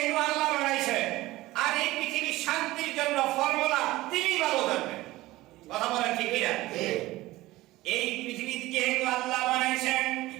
আল্লাহ বানাইছেন, আর এই পৃথিবীর শান্তির জন্য ফর্মুলা তিনি ভালো জানবেন। কথা বলেন ঠিক কিনা? এই পৃথিবীতে যেহেতু আল্লাহ বানাইছেন,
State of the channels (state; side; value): quieter; left; 18.1 dB